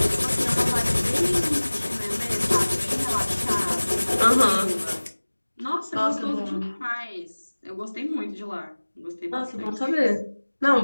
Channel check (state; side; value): inverted; both; correlation -1.00